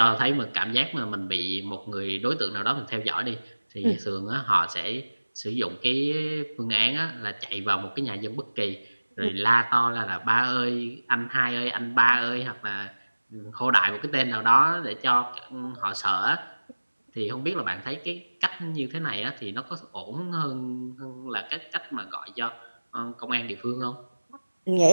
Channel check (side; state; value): both; inverted; correlation -1.00